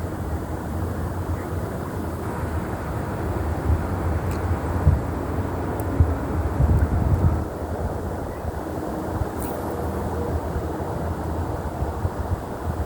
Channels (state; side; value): identical; both; correlation 1.00